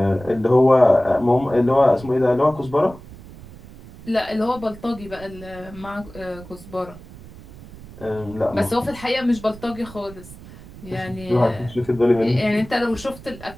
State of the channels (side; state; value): right; noise; rumble, 18 dB below the sound